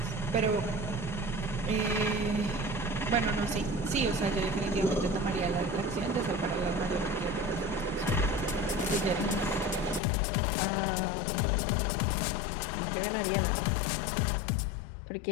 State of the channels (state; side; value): drops out; right; at 10.0 s